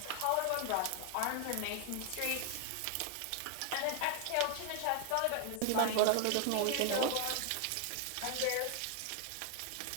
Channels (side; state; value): both; different; correlation 0.00